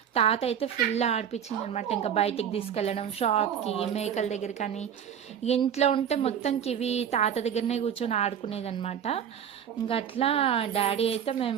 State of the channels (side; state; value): left; quieter; 8.8 dB